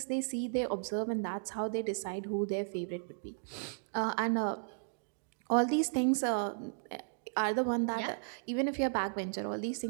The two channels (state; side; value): silent; left; digital silence